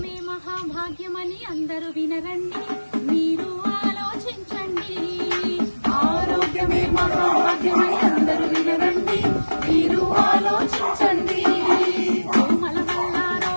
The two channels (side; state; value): both; inverted; correlation -1.00